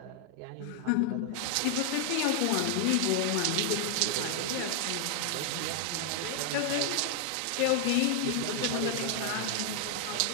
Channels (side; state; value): both; different; correlation 0.00